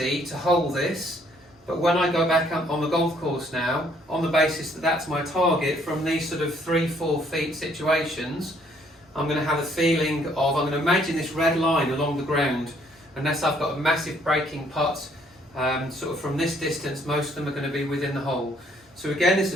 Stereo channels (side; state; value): both; normal; correlation 0.65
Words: to hold this, but when I go back up on the golf course now, on the basis that that's my target from these sort of 3-4 feet situations, I'm going to have a feeling of, I'm going to imagine this red line along the ground, unless I've got a massive breaking putt, sort of from this distance, most of them are going to be within the hole. So again, this